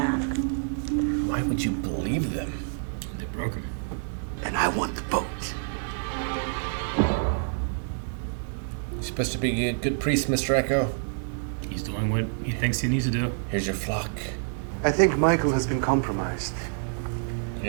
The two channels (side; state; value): left; silent; digital silence